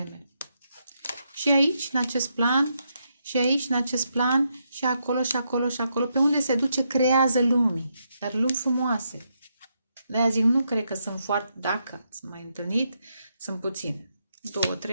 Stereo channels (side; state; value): both; inverted; correlation -0.80